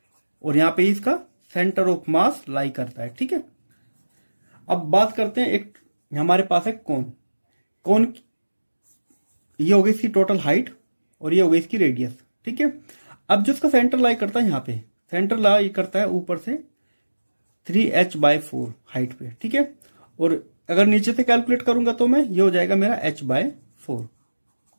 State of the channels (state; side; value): inverted; both; correlation -1.00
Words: और यहाँ पे इसका सेंटर ऑफ मास लाई करता है। ठीक है, अब बात करते हैं, एक हमारे पास है कोन, ये हो गई इसकी टोटल हाइट और ये हो गई इसकी रेडियस। ठीक है, अब जो इसका सेंटर लाई करता है यहाँ पे, सेंटर लाई करता है ऊपर से 3h/4 हाइट पे। ठीक है, और अगर नीचे से कैलकुलेट करूंगा तो मैं, ये हो जाएगा मेरा h/4।